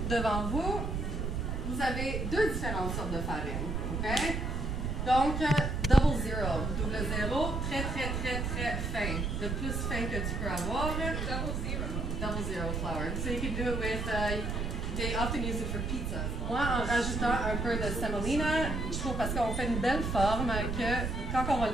devant vous, vous avez deux différentes sortes de farine. Okay? Donc, double zero. Double zéro, très, très, très, très fin. Le plus fin que tu peux avoir. Double zero flour. So you can do it with... They often use it for pizza. Moi, en rajoutant un peu de semolina, je trouve parce qu'on fait une belle forme que quand on va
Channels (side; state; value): right; noise; rumble, 2 dB below the sound